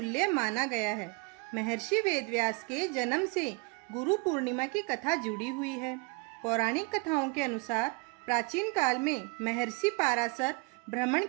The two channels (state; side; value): quieter; left; 30.0 dB